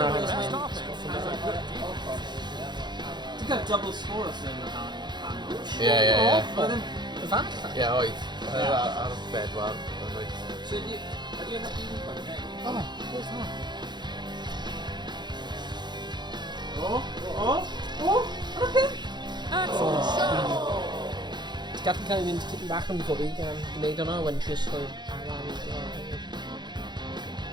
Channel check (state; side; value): late; left; 0.21 ms